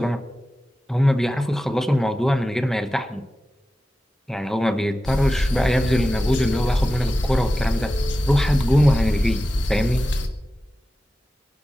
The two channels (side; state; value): both; normal; correlation 0.94